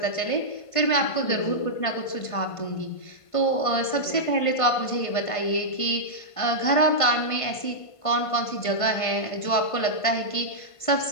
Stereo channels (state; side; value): late; right; 1.5 ms